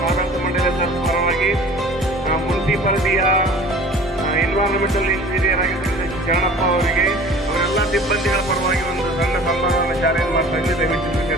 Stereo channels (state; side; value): normal; both; correlation 0.44